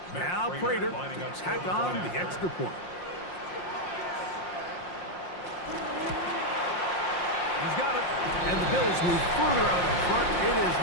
Now Prater to tack on the extra point. He's got it, and the Bills move further out in front. It is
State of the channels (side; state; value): right; late; 5.6 ms